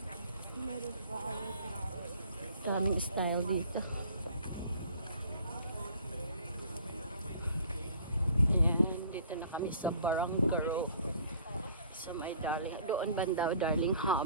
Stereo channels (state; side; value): inverted; both; correlation -0.53